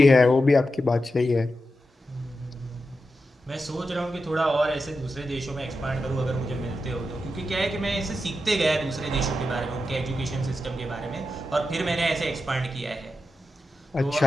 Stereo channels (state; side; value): normal; both; correlation 0.89